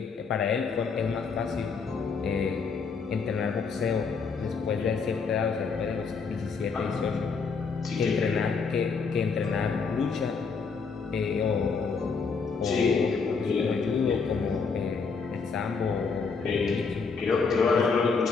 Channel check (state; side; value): quieter; right; 5.1 dB